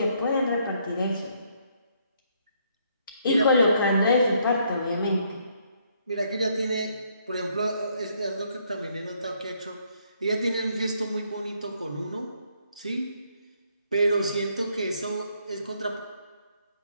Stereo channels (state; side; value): inverted; both; correlation -0.71